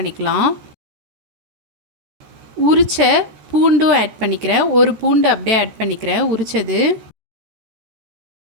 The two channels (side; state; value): left; late; 14 ms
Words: உரிச்ச பூண்டும் ஆட் பண்ணிக்கிறேன். ஒரு பூண்டு அப்படியே ஆட் பண்ணிக்கிறேன் உரிச்சது.